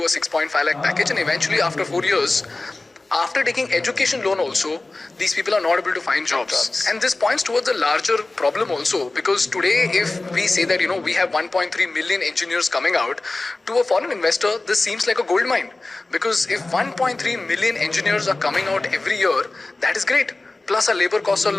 a 6.5 lakh package, and eventually after 4 years, after taking education loan also, these people are not able to find jobs. And this points towards a larger problem also, because today if we say that, we have 1.3 million engineers coming out, to a foreign investor, this seems like a gold mine. Because if 1.3 million engineers are coming out every year, that is great. Plus our labor costs are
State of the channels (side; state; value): right; quieter; 3.1 dB